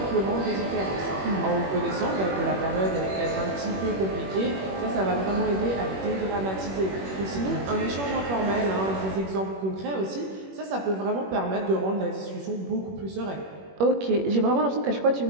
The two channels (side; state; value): left; late; 21 ms